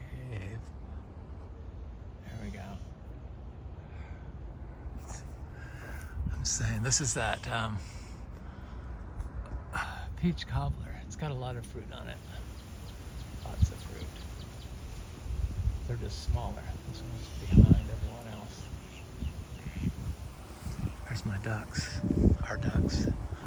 There we go. I'm saying this is that peach cobbler. It's got a lot of fruit on it. Lots of fruit. They're just smaller. This one's behind everyone else. There's my ducks. Our ducks.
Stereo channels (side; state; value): both; identical; correlation 1.00